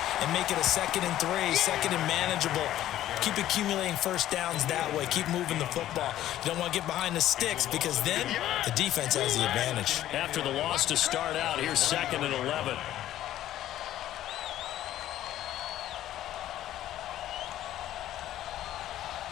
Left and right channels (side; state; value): right; quieter; 13.0 dB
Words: and make it a 2nd and 3, 2nd and manageable. Keep accumulating first downs that way. Keep moving the football. You don't want to get behind the sticks because then the defense has the advantage. After the loss to start out, here's 2nd and 11.